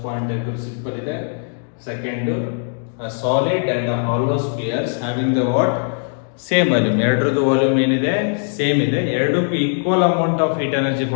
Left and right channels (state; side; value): silent; right; digital silence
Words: point simple ಇದೆ. Second, a solid and a hollow spheres having the what? Same volume. ಎರಡರದ್ದು volume ಏನಿದೆ? Same ಇದೆ. ಎರಡಕ್ಕೂ equal amount of heat energy